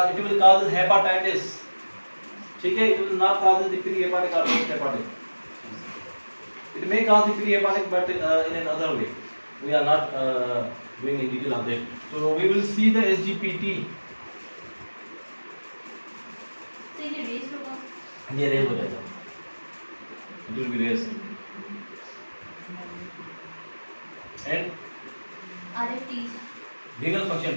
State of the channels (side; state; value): both; inverted; correlation -1.00